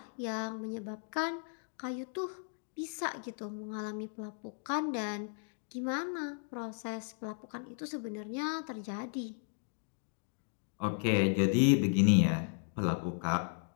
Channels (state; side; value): silent; right; 54 dB below the other